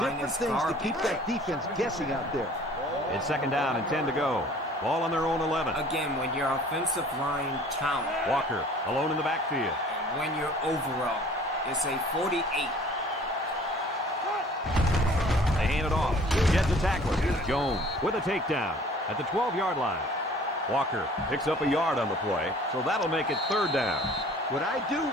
different is things to garbage. keep that defense guessing out there. It's 2nd down and 10 to go. Ball on their own 11. Again, when your offensive line count, Walker alone in the backfield. when your overall is a 48. They hand it off. Gets a tackler. Jones with a takedown at the 12-yard line. Walker picks up a yard on the play, so that'll make it 3rd down. What I do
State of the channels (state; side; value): normal; both; correlation 0.51